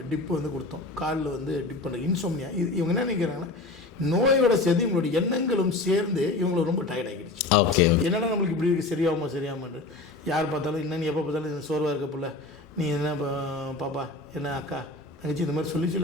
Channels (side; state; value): right; quieter; 3.2 dB